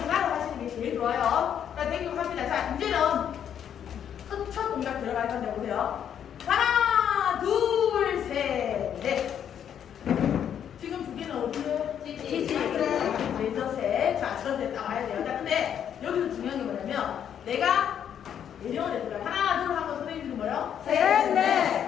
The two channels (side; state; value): right; quieter; 9.0 dB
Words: 하시는 게 제일 좋아요. 자, 땡기고 합니다. 자, 이제는 첫 동작 들어갈 건데 보세요. 하나, 둘, 셋, 넷. 지금 두 개는 어디에? 네, 저셋. 자, 저셋 나와야 돼요. 자, 근데 여기서 중요한 게 뭐냐면 내가 예정을 했어요. 하나, 둘 하고 선생님들은 뭐예요? 셋, 넷.